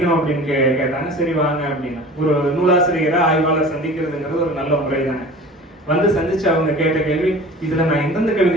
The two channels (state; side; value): normal; both; correlation 0.41